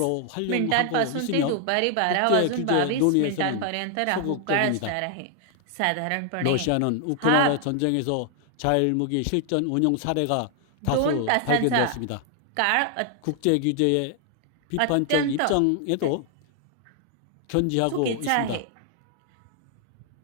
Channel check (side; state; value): both; different; correlation 0.00